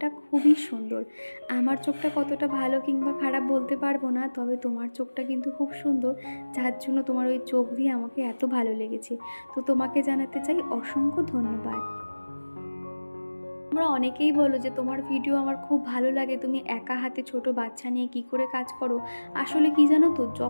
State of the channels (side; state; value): both; inverted; correlation -1.00